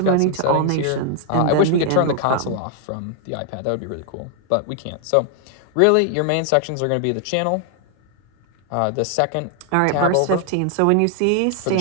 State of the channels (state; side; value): different; both; correlation 0.00